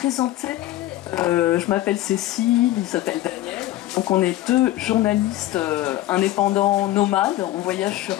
Je m'appelle Cécile, il s'appelle Daniel. Donc on est deux journalistes indépendants nomades. On voyage sur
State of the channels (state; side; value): quieter; right; 15.1 dB